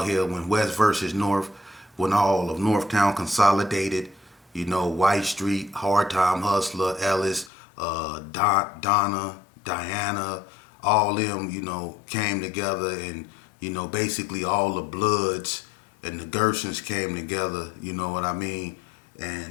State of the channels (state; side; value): drops out; right; at 7.5 s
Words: here, when West versus North, when all of Northtown consolidated, White Street, Hard Time Hustler, Ellis, Donna, Diana, all them, came together, and, basically all the Bloods and the Gersons came together, you know what I mean?